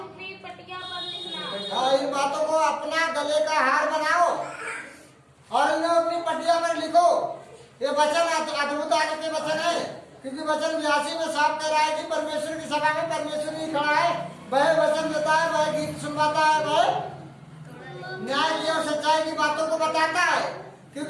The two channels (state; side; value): identical; both; correlation 1.00